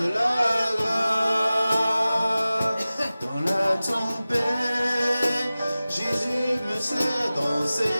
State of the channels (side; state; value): both; inverted; correlation -0.97